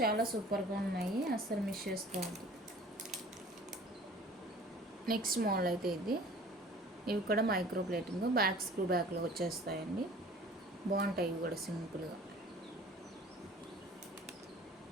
సూపర్గా ఉన్నాయి, అస్సలు మిస్ చేసుకోవద్దు. నెక్స్ట్ మోడల్ అయితే ఇది, ఇవి కూడా మైక్రో ప్లేటింగ్, బ్యాక్ స్క్రూ బ్యాక్లో వచ్చేస్తాయండి, బాగుంటాయి ఇవి కూడా సింపుల్గా.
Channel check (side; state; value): both; normal; correlation 0.48